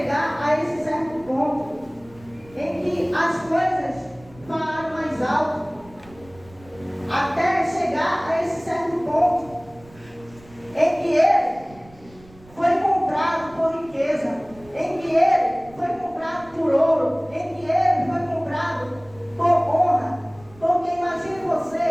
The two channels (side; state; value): right; noise; rumble, 24 dB below the sound